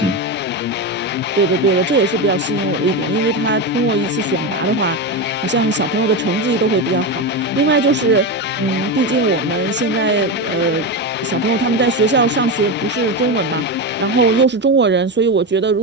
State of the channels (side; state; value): both; normal; correlation 0.15